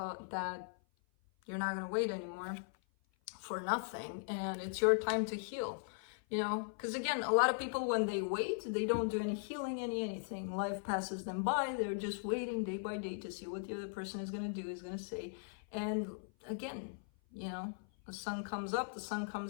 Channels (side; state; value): right; silent; 52 dB below the other